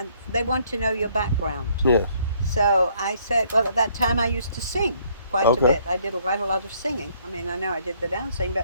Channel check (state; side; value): inverted; both; correlation -0.65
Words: they want to know your background. Yeah. So I said, well, at that time I used to sing quite a bit. I did quite a lot of singing. I mean, I know I did the dancing,